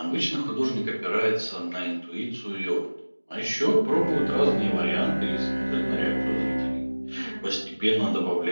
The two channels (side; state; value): both; inverted; correlation -1.00